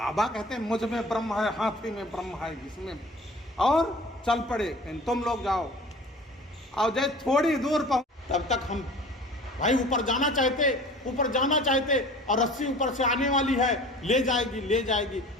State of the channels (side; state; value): both; normal; correlation 0.43